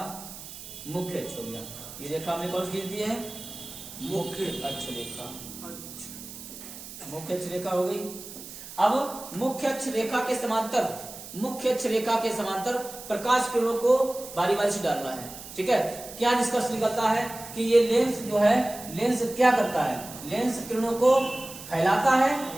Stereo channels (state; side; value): noise; right; hiss, 13 dB below the sound